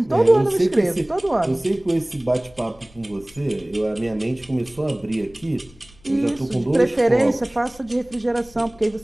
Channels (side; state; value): left; noise; rumble, 26 dB below the sound